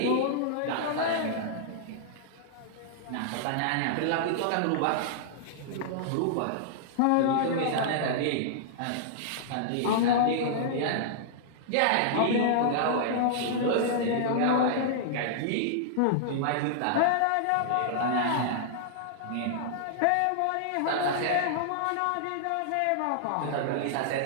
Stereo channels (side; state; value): both; different; correlation -0.01